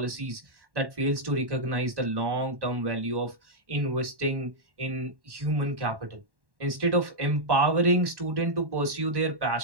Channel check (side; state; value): left; late; 1.1 ms